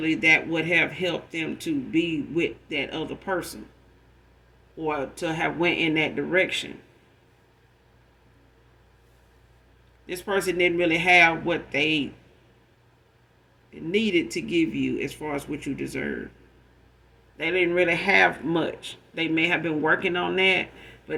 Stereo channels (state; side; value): identical; both; correlation 1.00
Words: that would have helped them to be with that other person or to have went in that direction. This person didn't really have what they needed to give you as far as what you deserve. They didn't really have much. They may have been working on that,